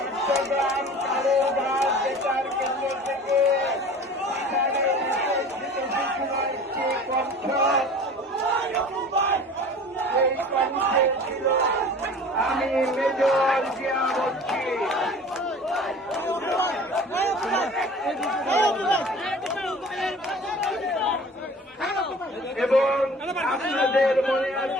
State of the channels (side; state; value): both; normal; correlation 0.42